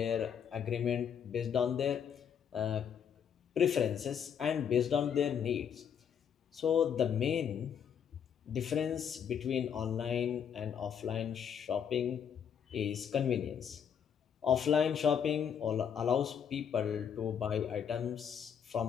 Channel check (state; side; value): quieter; right; 8.0 dB